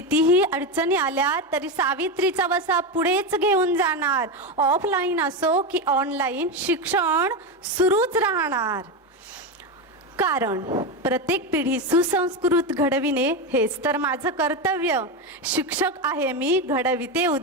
अडचणी आल्या तरी सावित्रीचा वसा पुढेच घेऊन जाणार. ऑफलाईन असो की ऑनलाईन शिक्षण सुरूच राहणार. कारण प्रत्येक पिढी सुसंस्कृत घडविणे हेच तर माझं कर्तव्य. शिक्षक आहे मी, घडविते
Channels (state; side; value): normal; both; correlation 0.14